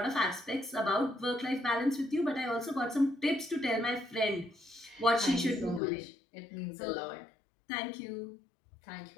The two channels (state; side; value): drops out; right; at 5.8 s